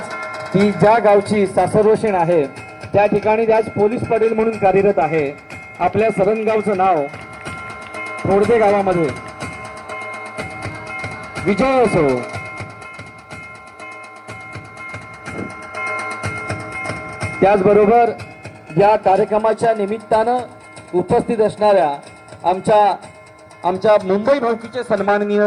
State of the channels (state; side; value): identical; both; correlation 1.00